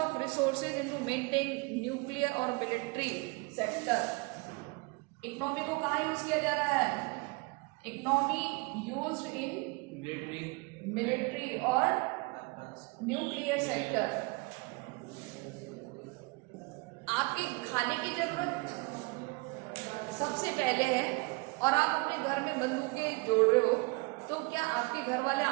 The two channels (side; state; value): left; quieter; 27.6 dB